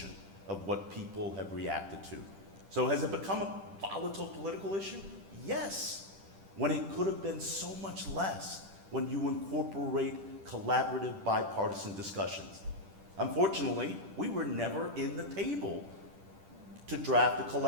of what people have reacted to. So has it become a volatile political issue? Yes, when it could have been so much less when you incorporate collaborative bipartisan discussions. Unfortunately, we were never in the table to draft a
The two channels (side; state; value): left; late; 10 ms